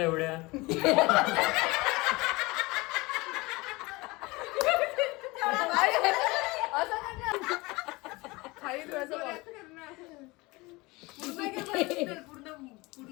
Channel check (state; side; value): quieter; right; 23.2 dB